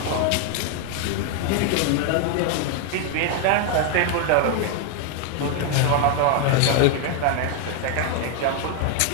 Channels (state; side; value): different; both; correlation 0.01